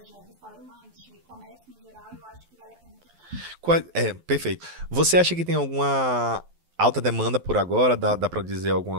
restaurante, comércio no geral, eu acho que vale a pena tentar. Perfeito. Você acha que tem alguma alta demanda por agora? Dá para dizer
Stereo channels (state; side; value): late; left; 12 ms